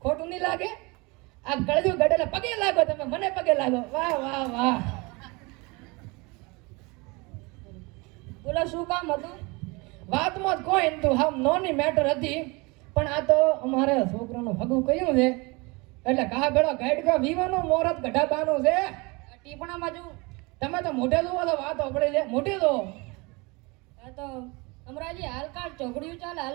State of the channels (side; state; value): left; quieter; 26.6 dB